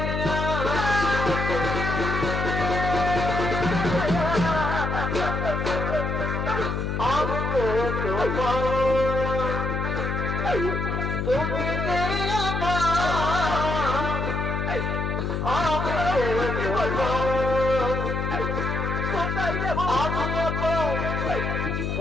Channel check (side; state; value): left; noise; hum, 1 dB below the sound